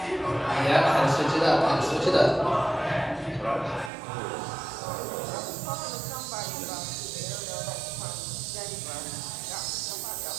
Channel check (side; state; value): left; drops out; at 3.9 s